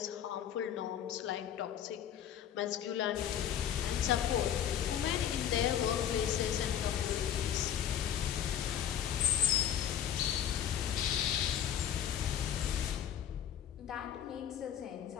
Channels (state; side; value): quieter; right; 9.8 dB